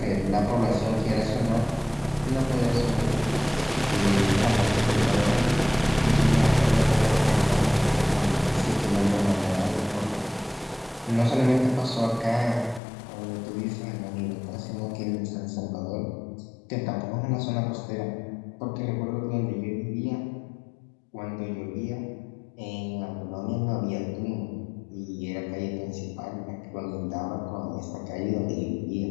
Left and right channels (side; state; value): right; drops out; at 12.8 s